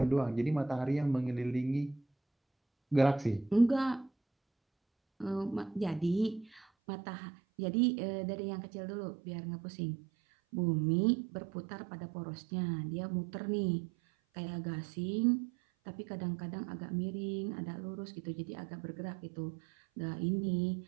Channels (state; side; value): drops out; left; at 6.7 s